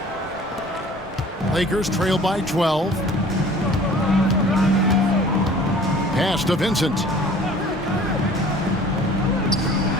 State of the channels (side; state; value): both; normal; correlation 0.48